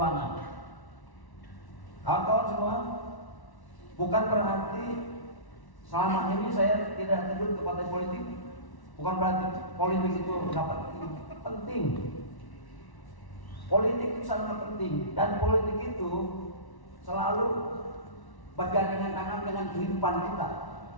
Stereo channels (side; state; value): right; late; 1.1 ms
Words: Kawan-kawan semua, bukan berarti selama ini saya tidak terjun ke partai politik, bukan berarti politik itu dapat penting. Politik itu sangat penting, dan politik itu selalu bergandengan tangan dengan kehidupan kita.